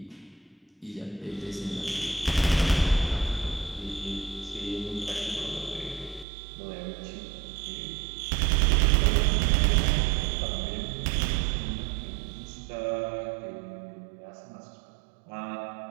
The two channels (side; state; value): left; drops out; at 6.2 s